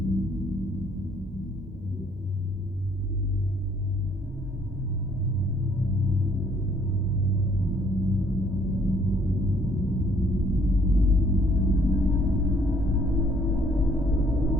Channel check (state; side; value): normal; both; correlation 0.63